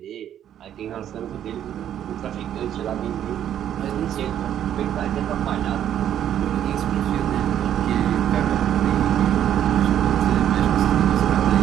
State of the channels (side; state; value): left; quieter; 10.4 dB